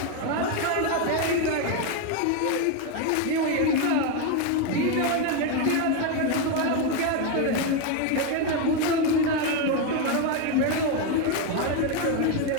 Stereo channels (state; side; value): different; both; correlation 0.02